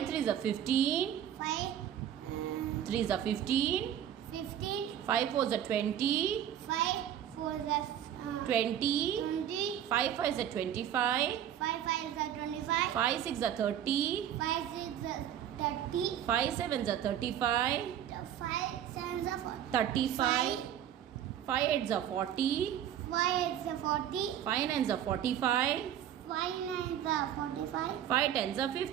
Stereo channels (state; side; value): quieter; left; 10.3 dB